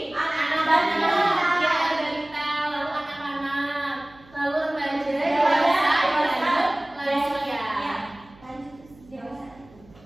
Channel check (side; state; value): right; noise; hum, 26 dB below the sound